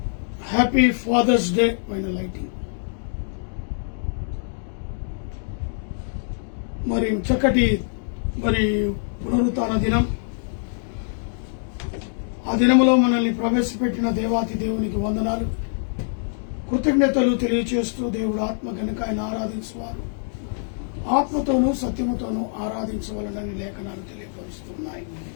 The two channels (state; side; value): silent; right; digital silence